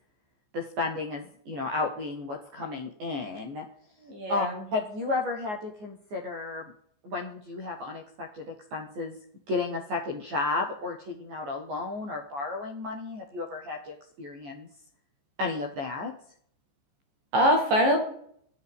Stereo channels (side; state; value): left; late; 14 ms